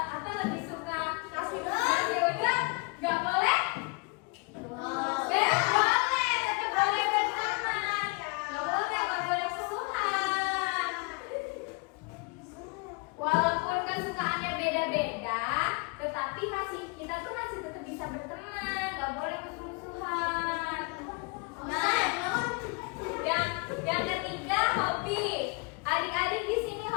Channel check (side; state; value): right; quieter; 30.9 dB